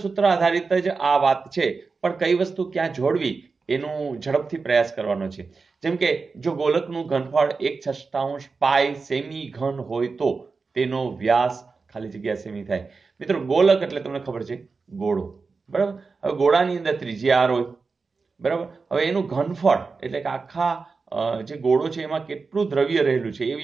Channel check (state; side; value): quieter; left; 4.5 dB